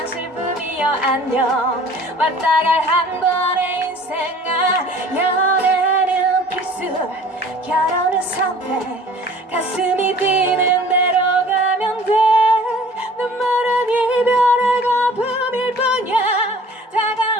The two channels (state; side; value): normal; both; correlation 0.48